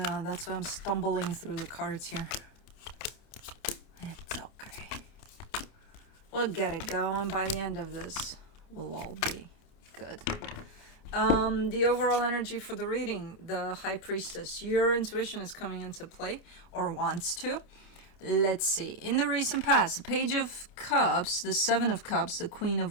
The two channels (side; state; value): right; late; 29 ms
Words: that's why I'm stumbling through the cards here. It's okay. We'll get it going. By the end of this, we'll all be good. The overall energy for the reading, the High Priestess. Your intuition is coming into play, or wants to. Let's see. In the recent past, the Page of Cups, the Seven of Cups, the Queen